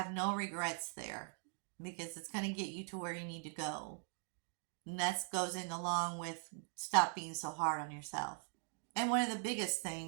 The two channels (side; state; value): left; silent; 50 dB below the other